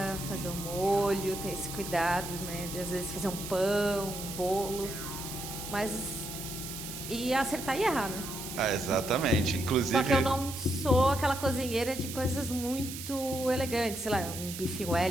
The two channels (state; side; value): noise; right; hiss, 9 dB below the sound